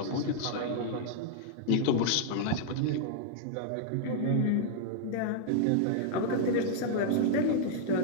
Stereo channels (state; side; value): different; both; correlation -0.01